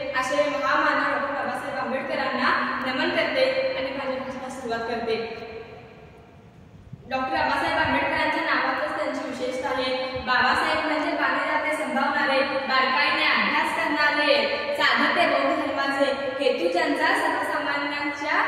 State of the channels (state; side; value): identical; both; correlation 1.00